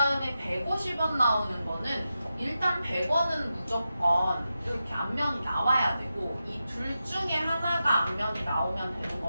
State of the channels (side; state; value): both; inverted; correlation -0.90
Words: 150원 나오는 거는 일단 100원은 무조건 이렇게 앞면이 나와야 되고 이 둘 중에 하나가 앞면이 나오면 되는